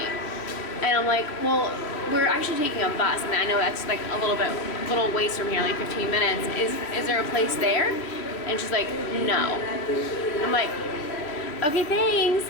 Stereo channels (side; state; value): right; late; 3.2 ms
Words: And I'm like, well, we're actually taking a bus, and I know that's like a little ways from here, like 15 minutes. Is there a place there? And she's like, no. I'm like, okay, thanks.